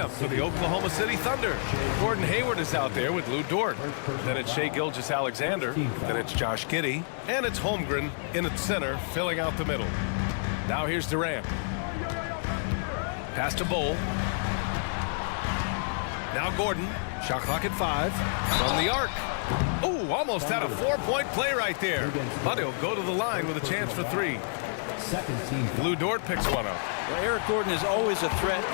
for the Oklahoma City Thunder. Gordon Hayward is out there with Lou Dort. Then it's Shai Gilgeous-Alexander. Then it's Josh Giddey. And it's Holmgren in at center, filling out the middle. Now here's Durant. Pass to Bull. Now Gordon. Shot clock at 5. From the arc. Oh, almost had a 4-point play right there. But he'll go to the line with a chance for 3. Lou Dort picks one up. Well, Eric Gordon is always a threat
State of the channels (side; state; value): right; silent; digital silence